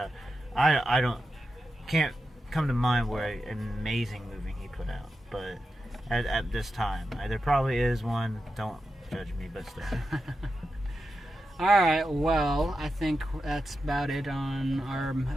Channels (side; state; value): both; normal; correlation 0.89